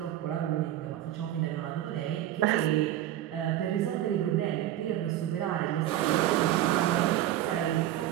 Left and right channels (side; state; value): left; quieter; 12.9 dB